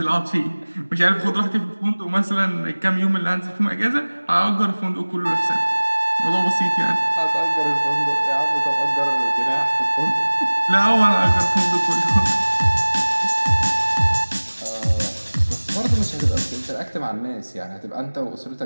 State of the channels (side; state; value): both; inverted; correlation -1.00